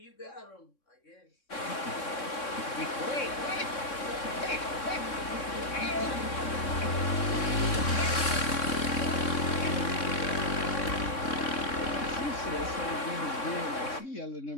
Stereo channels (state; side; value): late; right; 3.6 ms